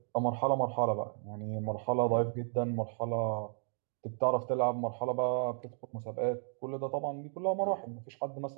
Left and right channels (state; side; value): silent; left; 55 dB below the other